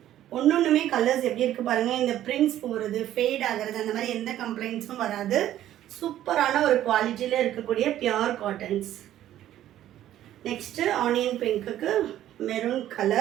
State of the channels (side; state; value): left; quieter; 12.6 dB